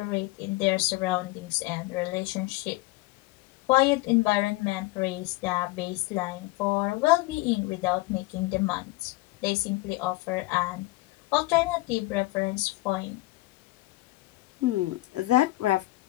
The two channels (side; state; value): right; quieter; 20.3 dB